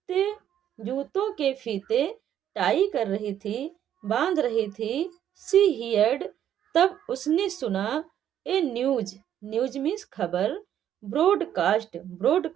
जूतों के फीते टाई कर रही थी, बांध रही थी। She heard, तब उसने सुना। ए न्यूज, न्यूज मीन्स खबर। ब्रॉडकास्ट,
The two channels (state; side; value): quieter; left; 10.5 dB